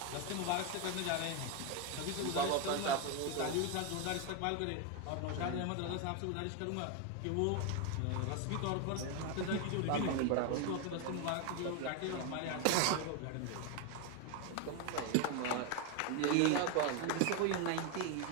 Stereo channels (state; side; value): different; both; correlation 0.02